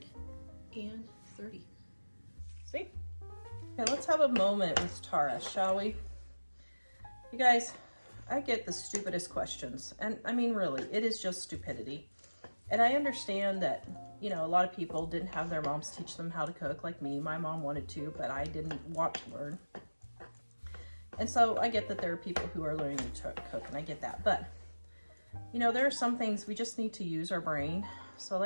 See? Okay, let's have a moment with Tara, shall we? You guys, I get the stupidest questions. And I mean, really, it is just stupidity. And I understand that, you know, a lot of people didn't have their moms teach them how to cook like me. My mom wanted to, but I didn't want to learn. And so I get that there are people who are learning to cook, and I get that. But, you know, there are some things we just need to use our brain.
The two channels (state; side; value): inverted; both; correlation -1.00